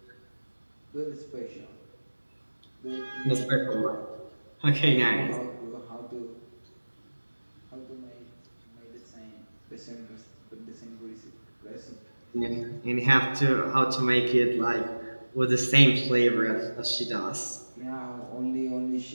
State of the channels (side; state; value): both; inverted; correlation -1.00